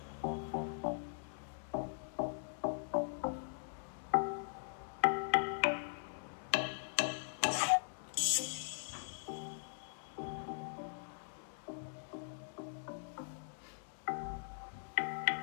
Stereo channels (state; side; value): silent; right; digital silence